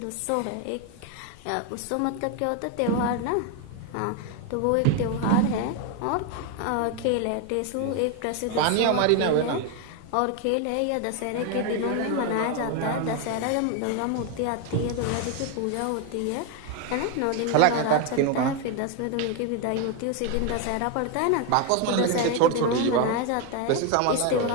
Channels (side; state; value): both; different; correlation 0.01